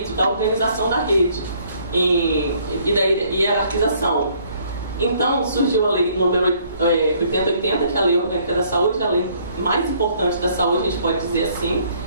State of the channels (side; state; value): both; inverted; correlation -0.63